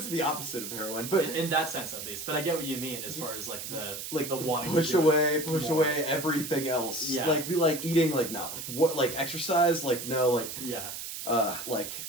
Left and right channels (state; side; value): noise; right; hiss, 7 dB below the sound